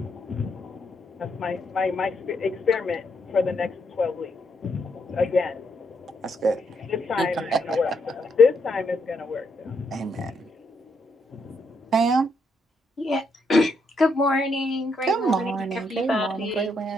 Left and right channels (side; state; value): both; normal; correlation 0.77